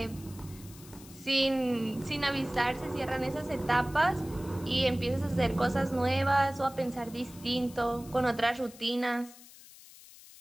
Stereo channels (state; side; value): noise; left; hiss, 20 dB below the sound